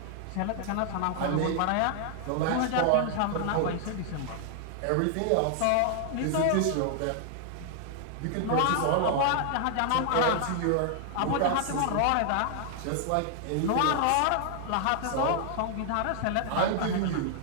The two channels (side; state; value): both; different; correlation 0.00